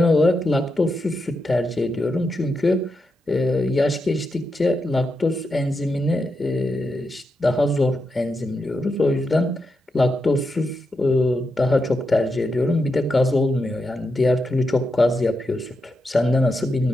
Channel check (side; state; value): both; normal; correlation 0.86